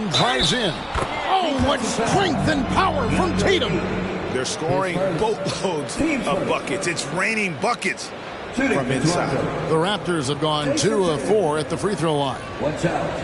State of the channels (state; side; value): identical; both; correlation 1.00